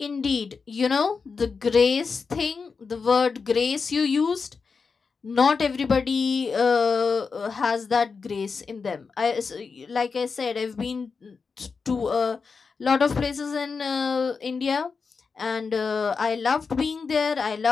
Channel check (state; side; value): quieter; right; 5.1 dB